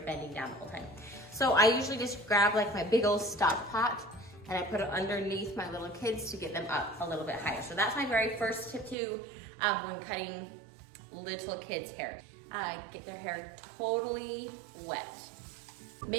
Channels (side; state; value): left; drops out; at 9.0 s